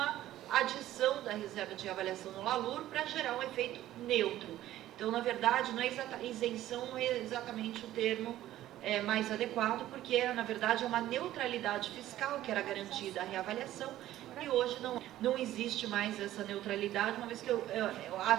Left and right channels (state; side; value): quieter; left; 13.9 dB